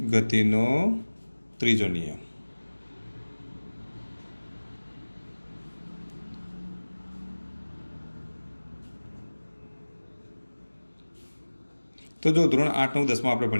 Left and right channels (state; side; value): inverted; both; correlation -1.00